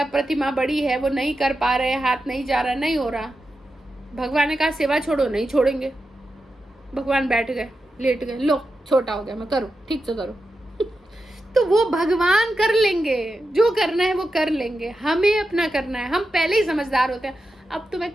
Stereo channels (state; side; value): normal; both; correlation 0.89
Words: प्रतिमा बड़ी है, वो नहीं कर पा रहे, हाथ नहीं जा रहा, नहीं हो रहा। भगवान ने कहा सेवा छोड़ो, नहीं छोड़ेंगे। भगवान बैठ गए, लेट गए, लो छोटा हो गया, मैं करूँ, ठीक से करो। तो वो भगवान कर लेंगे, जो करना है वो कर लेंगे, हमें अपना करना है। हम पहले ही समझदार होते हैं, अब तो मैं